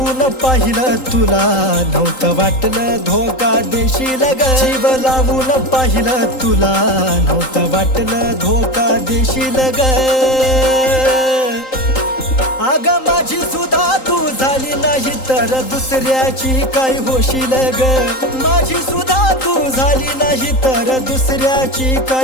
पाहिलं तुला नव्हतं वाटलं धोका देशील ग जीव लावून पाहिलं तुला नव्हतं वाटलं धोका देशील ग अग माझी सुद्धा तू झाली नाही तर दुसऱ्याची काय होशील ग माझी सुद्धा तू झाली नाही तर दुसऱ्याची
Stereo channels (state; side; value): late; right; 3.8 ms